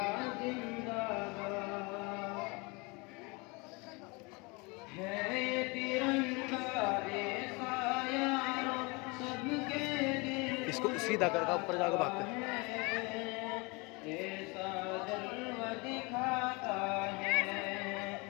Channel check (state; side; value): quieter; right; 27.8 dB